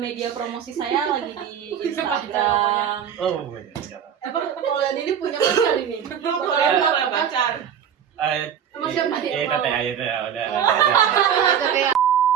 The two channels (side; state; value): left; quieter; 8.6 dB